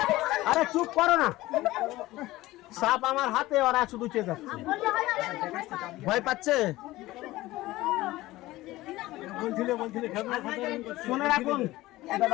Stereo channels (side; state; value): right; quieter; 17.8 dB